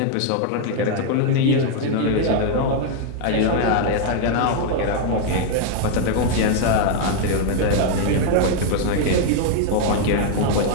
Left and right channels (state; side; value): different; both; correlation 0.00